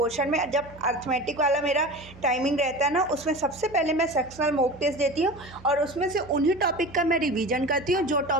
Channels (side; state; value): right; noise; hum, 20 dB below the sound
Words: में, जब अर्थमेटिक वाला मेरा टाइमिंग रहता है ना, उसमें सबसे पहले मैं सेक्शनल मॉक टेस्ट देती हूँ, और उसमें से उन्हीं टॉपिक का मैं रिवीजन करती हूँ जो